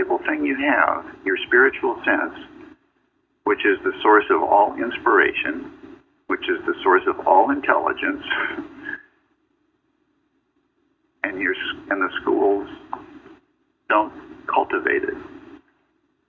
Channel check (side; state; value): both; identical; correlation 1.00